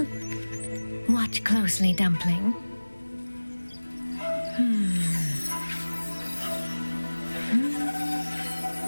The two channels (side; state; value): both; inverted; correlation -1.00